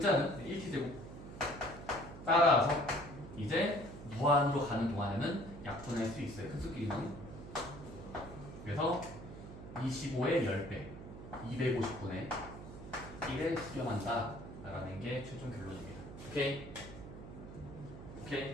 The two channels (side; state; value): right; noise; hum, 13 dB below the sound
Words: 1t제곱. 따라서 이제 무한으로 가는 동안에는 약분할 수 있어요. 큰 수끼리는. 그래서 25의 10배 250분의 1에 수렴한다 라는 게 최종 결론입니다. 오케이?